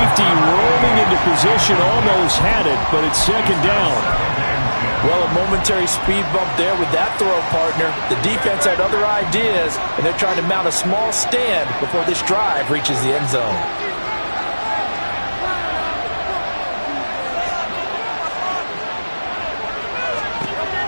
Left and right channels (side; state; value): both; inverted; correlation -1.00